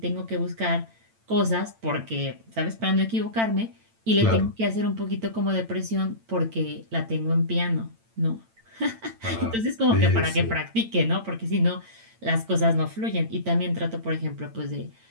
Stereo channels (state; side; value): late; left; 8.9 ms